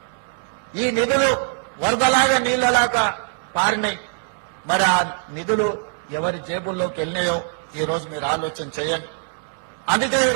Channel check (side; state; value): left; silent; 64 dB below the other